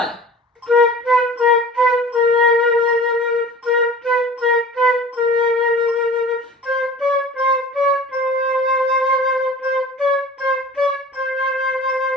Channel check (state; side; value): normal; both; correlation 0.42